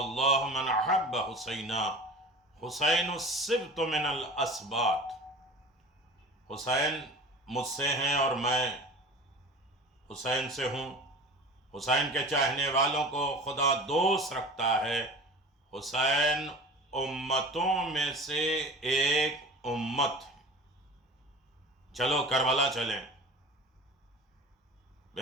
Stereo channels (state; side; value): normal; both; correlation 0.38